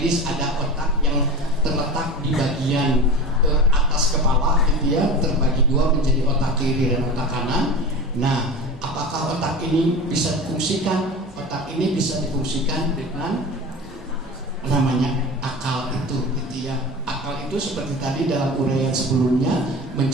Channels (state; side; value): normal; both; correlation 0.31